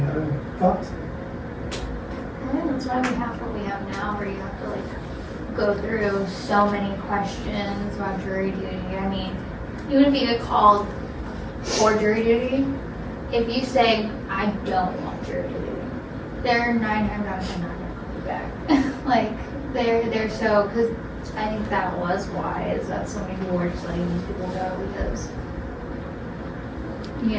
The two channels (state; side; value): identical; both; correlation 1.00